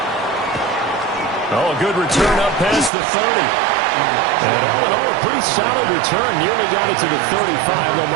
Oh, a good return up past the 30. And all in all, a pretty solid return. Nearly got it to the 35. They'll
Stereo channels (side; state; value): left; drops out; at 2.9 s